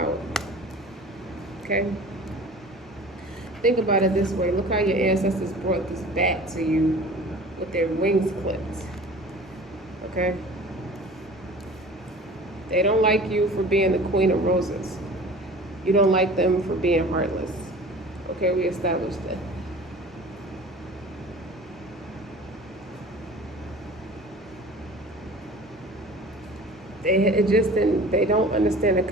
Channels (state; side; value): normal; both; correlation 0.42